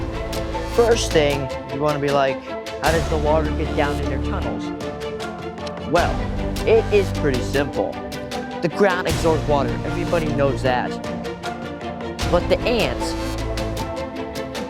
First thing, you want to be like, how does the water get down in their tunnels? Well, it is pretty simple. The ground absorbs water, everybody knows that. But the ants,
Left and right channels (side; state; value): both; identical; correlation 1.00